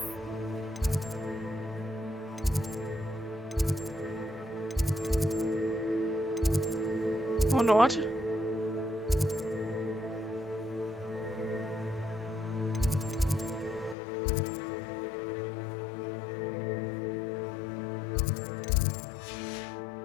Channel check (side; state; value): right; drops out; at 14.0 s